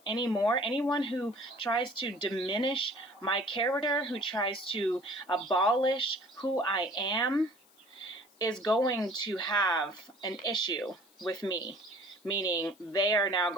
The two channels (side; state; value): left; noise; hiss, 29 dB below the sound